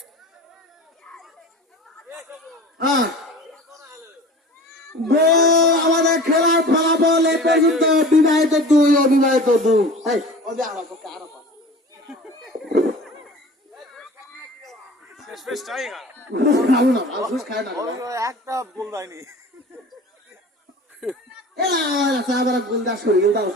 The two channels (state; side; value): normal; both; correlation 0.40